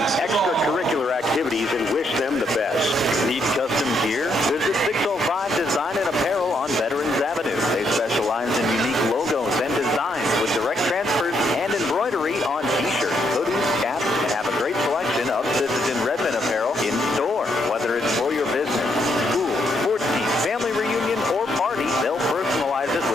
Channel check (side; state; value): both; normal; correlation 0.75